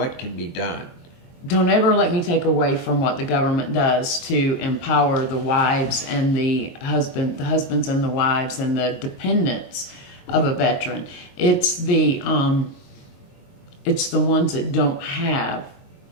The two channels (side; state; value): right; late; 22 ms